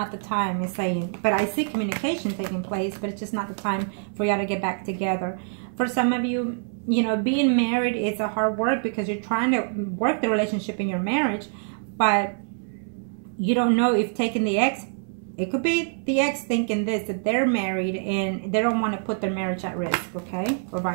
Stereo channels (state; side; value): silent; left; 62 dB below the other